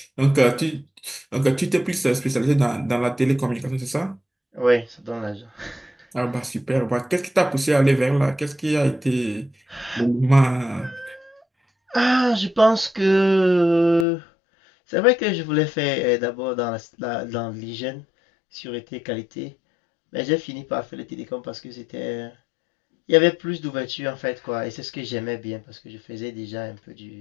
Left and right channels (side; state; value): right; drops out; at 14.1 s